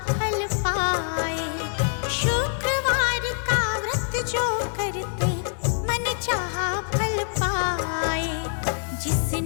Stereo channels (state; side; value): silent; right; 62 dB below the other